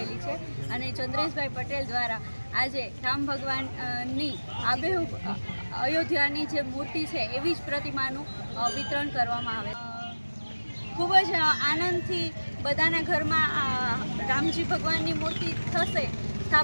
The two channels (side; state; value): both; inverted; correlation -1.00